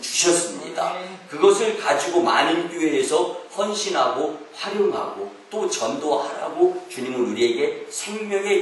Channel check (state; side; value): identical; both; correlation 1.00